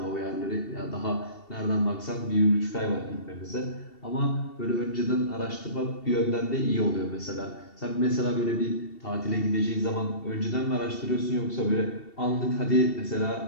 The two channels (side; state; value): right; late; 2.7 ms